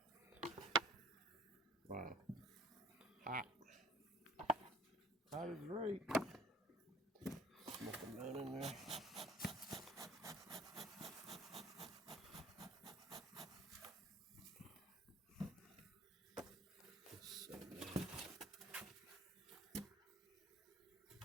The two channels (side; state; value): both; normal; correlation 0.52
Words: Wow. Hot. Hot is right. Smoking down in there.